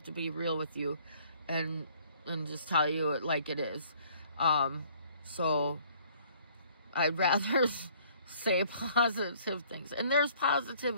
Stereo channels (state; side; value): inverted; both; correlation -0.58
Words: to be real with you and just tell you it like it is. So I'd rather say positive things, and there's